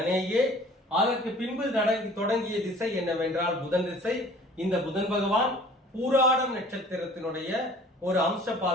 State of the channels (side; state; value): both; normal; correlation 0.49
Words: அதற்கு பின்பு தொடங்கிய திசை என்னவென்றால் புதன் திசை. இந்த புதன் பகவான் பூராடம் நட்சத்திரத்தினுடைய ஒரு அம்ச